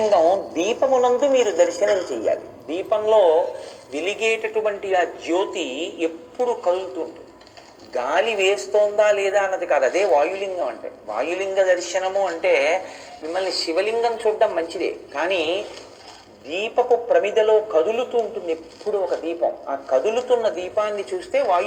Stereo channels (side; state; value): both; identical; correlation 1.00